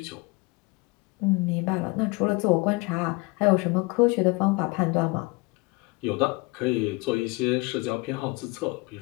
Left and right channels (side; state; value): right; quieter; 25.2 dB